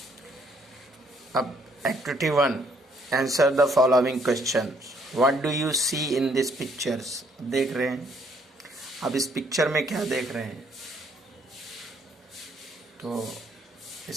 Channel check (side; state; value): both; normal; correlation 0.66